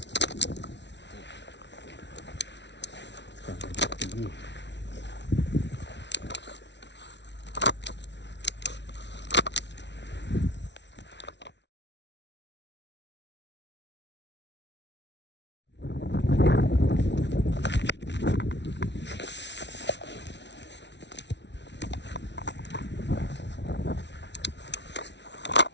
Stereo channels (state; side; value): late; right; 0.51 ms